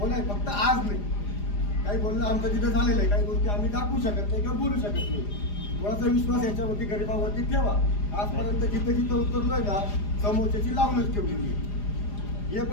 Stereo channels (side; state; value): right; late; 4.9 ms